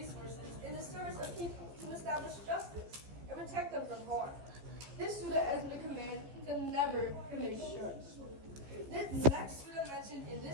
in the service of people to establish justice and protect them from harm. This surah is a command to never commit shirks. The next surah mentioned in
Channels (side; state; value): left; late; 15 ms